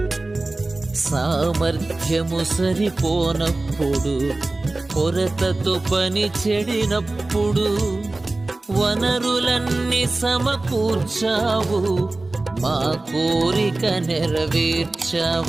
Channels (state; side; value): quieter; left; 3.0 dB